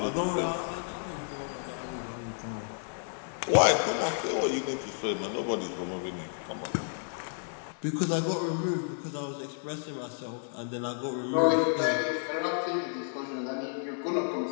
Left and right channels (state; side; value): silent; right; 57 dB below the other